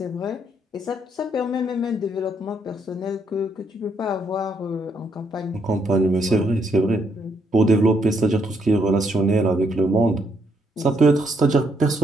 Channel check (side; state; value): both; normal; correlation 0.74